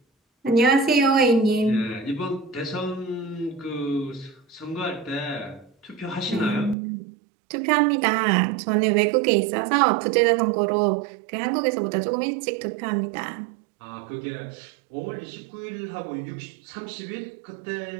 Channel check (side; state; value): left; drops out; at 6.8 s